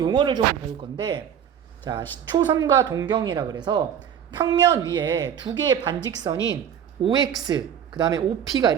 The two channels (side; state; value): left; quieter; 8.8 dB